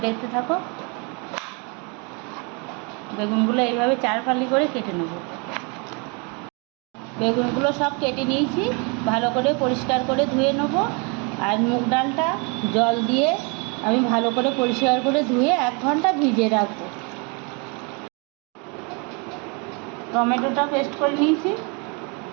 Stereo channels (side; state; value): left; quieter; 32.0 dB